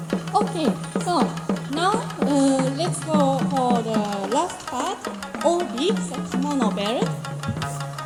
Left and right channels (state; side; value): identical; both; correlation 1.00